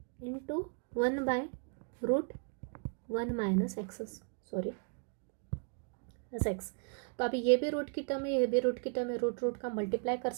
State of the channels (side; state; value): left; quieter; 38.8 dB